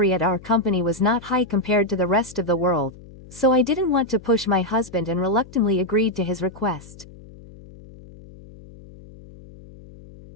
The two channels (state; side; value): noise; left; hum, 19 dB below the sound